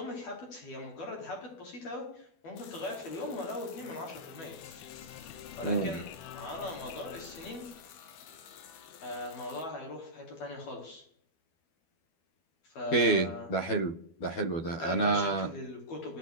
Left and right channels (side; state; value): right; late; 12 ms